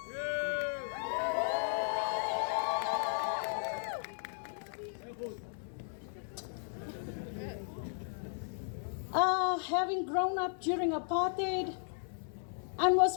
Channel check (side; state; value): right; silent; digital silence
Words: Having grown up during apartheid and was